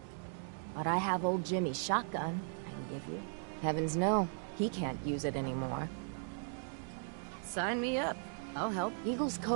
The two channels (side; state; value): left; silent; digital silence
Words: But I have old Jimmy's shotgun I can give you. Heavens no, he can't use it anymore. Sign me up. I'll help. Eagle's